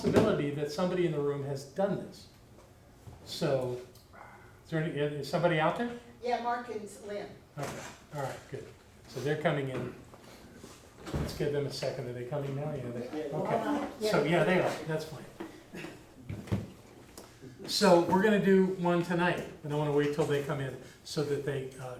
that somebody in the room has done this. So, is somebody out there? Yeah, Mark and Lynn. Okay, all right, good. So they're coming in. Let's give them a second. Are they coming now? Yeah, okay. So, yeah, they are. That's fine. So we're going to do one tonight, and I want to wait till they come in so that they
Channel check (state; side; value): identical; both; correlation 1.00